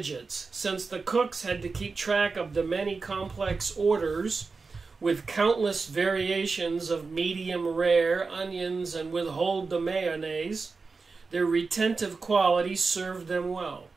since the cooks had to keep track of the many complex orders with countless variations of medium rare, onions, and withhold the mayonnaise. Their retentive quality served them well.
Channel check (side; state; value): left; quieter; 4.4 dB